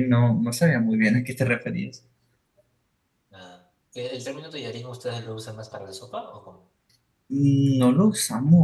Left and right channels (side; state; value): both; identical; correlation 1.00